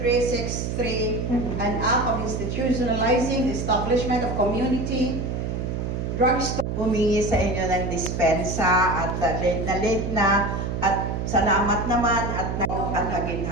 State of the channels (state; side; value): noise; right; hum, 3 dB below the sound